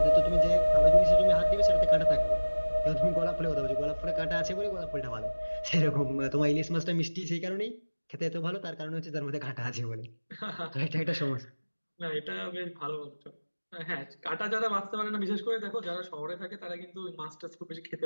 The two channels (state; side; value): inverted; both; correlation -1.00